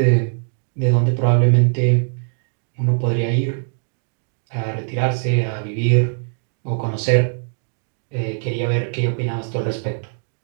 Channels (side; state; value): left; silent; digital silence